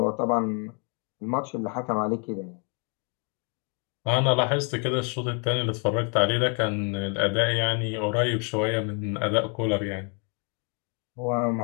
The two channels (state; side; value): quieter; right; 37.3 dB